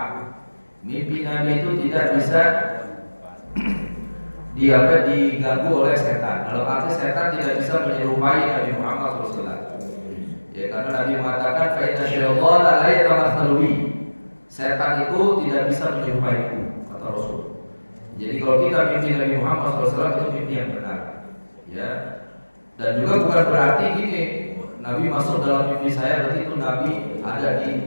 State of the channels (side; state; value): both; inverted; correlation -1.00